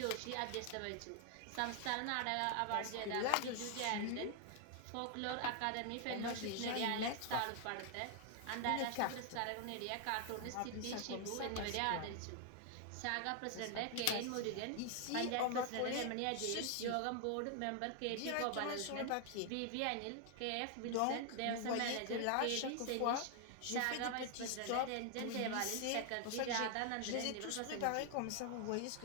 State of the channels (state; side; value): different; both; correlation 0.00